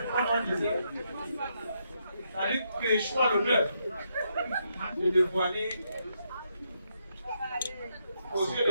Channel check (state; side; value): inverted; both; correlation -0.78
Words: comme on disait, ça dit que je choisis l'honneur de dévoiler aux yeux